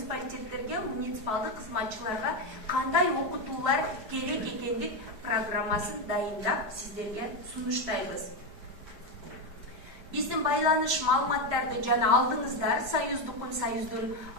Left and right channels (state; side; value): late; left; 4.7 ms